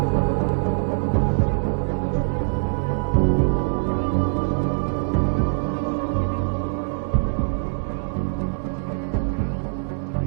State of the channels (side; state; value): left; silent; digital silence